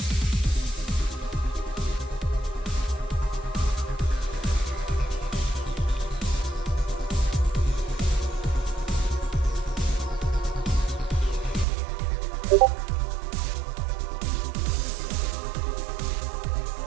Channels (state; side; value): drops out; left; at 11.7 s